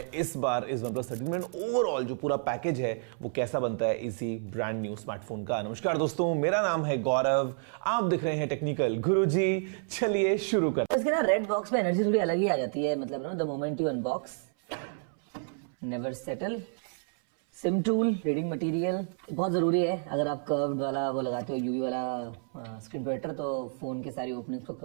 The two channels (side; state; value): left; silent; 58 dB below the other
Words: इस बार इस OnePlus 13 में। ओवरऑल जो पूरा पैकेज है वो कैसा बनता है इसी ब्रांड न्यू स्मार्टफोन का। नमस्कार दोस्तों, मेरा नाम है गौरव, आप दिख रहे हैं टेक्निकल गुरुजी। चलिए शुरू करते हैं। इसके ना रेड बॉक्स में एनर्जी थोड़ी अलग ही आ जाती है, मतलब ना the moment you unbox never settle. SIM tool, reading material बहुत जरूरी है। अगर आप कर्व्ड वाला वो लगाते हो यूवी वाला स्क्रीन प्रोटेक्टर तो फोन के सारी ओपनिंग्स को